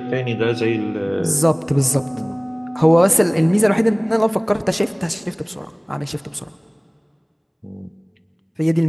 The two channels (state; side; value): identical; both; correlation 1.00